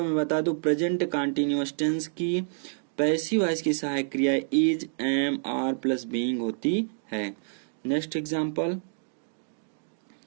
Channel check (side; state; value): left; silent; digital silence